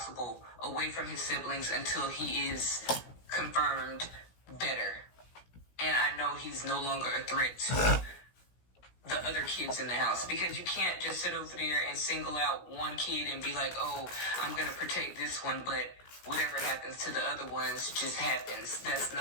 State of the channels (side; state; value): right; late; 17 ms